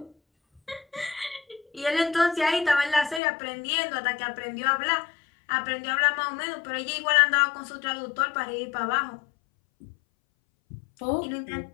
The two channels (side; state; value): right; drops out; at 3.2 s